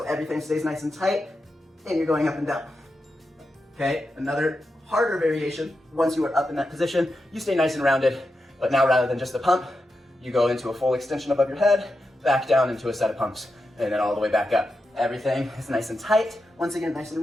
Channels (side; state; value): both; normal; correlation 0.88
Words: everything stays nice and tight, and you're going up and down, okay? Another harder variation, once you are up in that position, you stay nice and rounded, but now rather than just the pump, you go into a full extension above your head, back down into a set of pumps, and then all the way back up. Everything is nice and tight. Once again, nice